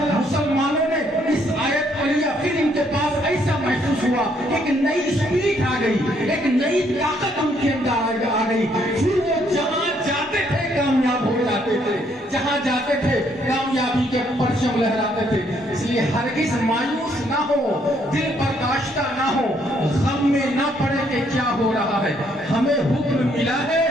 مسلمانوں نے اس آیت پڑھی، پھر ان کے پاس ایسا محسوس ہوا ایک نئی اسپرٹ آ گئی، ایک نئی طاقت ان کے اندر آ گئی، پھر وہ جہاں جاتے تھے کامیاب ہو جاتے تھے، جہاں جاتے تھے کامیابی کے پرچم لہراتے تھے۔ اس لیے ہرگز مایوس نہ ہو، دل برداشتہ نہ ہو، غم میں نہ پڑے کہ کیا ہو رہا ہے۔ ہمیں حکم ملا ہے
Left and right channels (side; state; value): both; normal; correlation 0.69